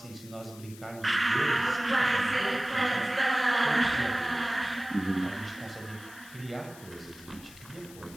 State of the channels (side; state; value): left; noise; hiss, 19 dB below the sound